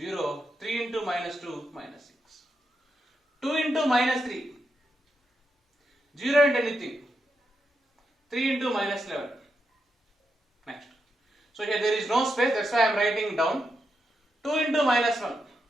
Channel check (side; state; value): both; normal; correlation 0.84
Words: 3 into minus 2. Minus 6. 2 into minus 3. 0 into anything. 3 into minus 11. Next. So here there is no space. That's why I am writing down. 2 into minus 1.